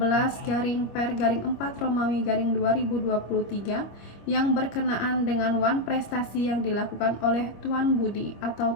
yang berkenaan dengan wan prestasi yang dilakukan oleh Tuan Budi atau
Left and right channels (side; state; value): right; late; 25 ms